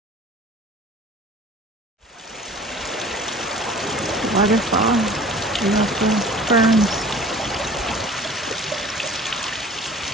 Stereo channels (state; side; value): normal; both; correlation 0.46